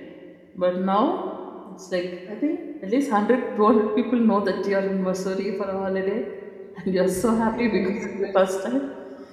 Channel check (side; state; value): both; identical; correlation 1.00